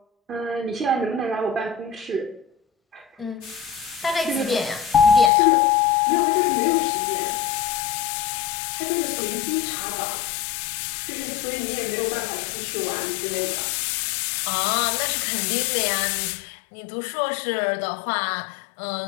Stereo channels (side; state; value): right; drops out; at 5.3 s